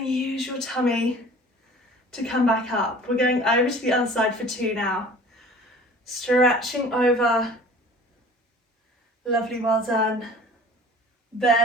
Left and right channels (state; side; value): normal; both; correlation 0.46